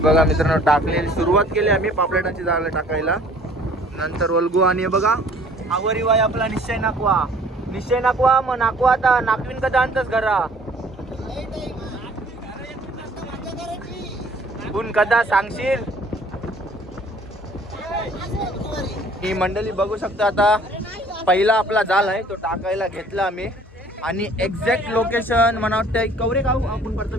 मित्रांनो टाकलेली सुरुवात केली आम्ही पापलेटांची जाळ टाकायला. नंतर वल्गू आणि बघा आवरी वाय आपला निश्चय नाकवा मग नाकवा आता नाकवीन कदा आणतच घरा गुण कदा सांगशील. ही मंडळी बघू शकता आता पहिला आपला जाल आहे तो टाकायला घेतला आम्ही. आणि एक्झॅक्ट लोकेशन मला वाटतं कवरे गाव आपण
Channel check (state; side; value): normal; both; correlation 0.54